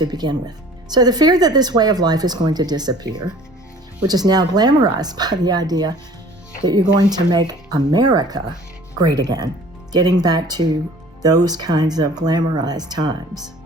begin with. So the fear that this way of life is going to disappear, which is now glamorized by the idea that you're going to make America great again, getting back to those kinds of glamorized times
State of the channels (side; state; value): both; normal; correlation 0.49